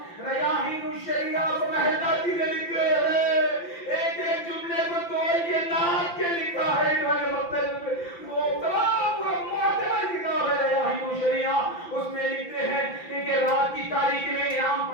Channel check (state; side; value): late; right; 5.8 ms